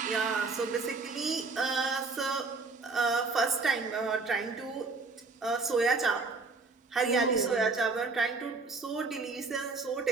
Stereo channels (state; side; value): quieter; left; 4.0 dB